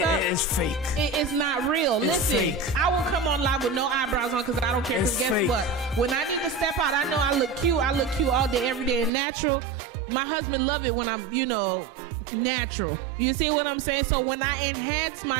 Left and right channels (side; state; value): left; drops out; at 9.1 s